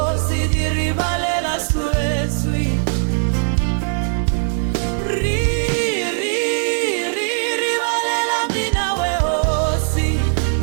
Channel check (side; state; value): left; silent; 63 dB below the other